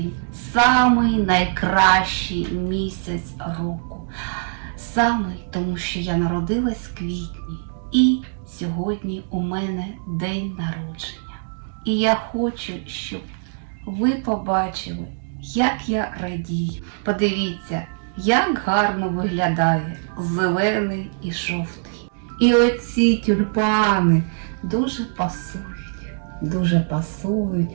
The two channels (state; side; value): silent; left; digital silence